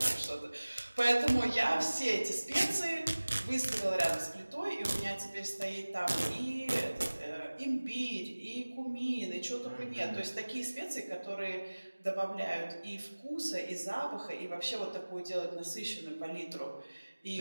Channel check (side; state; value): both; inverted; correlation -1.00